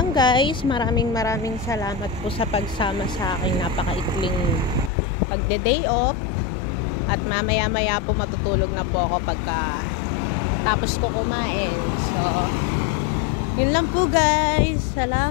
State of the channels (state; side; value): drops out; right; at 4.9 s